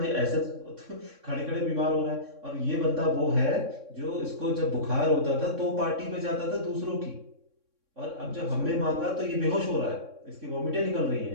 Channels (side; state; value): left; late; 3.6 ms